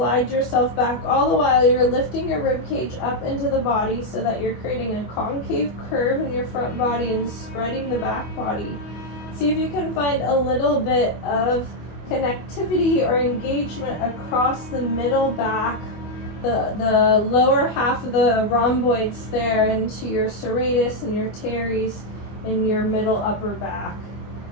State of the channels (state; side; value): late; right; 24 ms